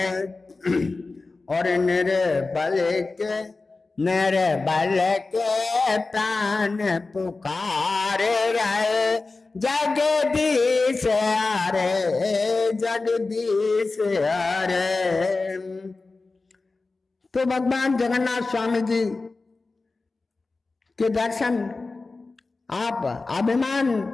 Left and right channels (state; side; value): quieter; right; 3.7 dB